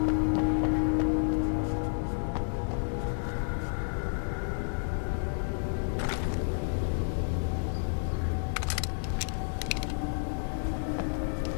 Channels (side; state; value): right; silent; 57 dB below the other